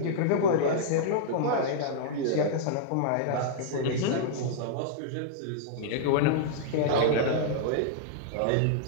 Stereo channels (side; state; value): both; different; correlation -0.02